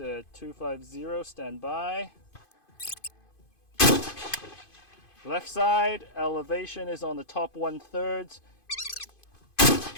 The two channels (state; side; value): late; right; 2.5 ms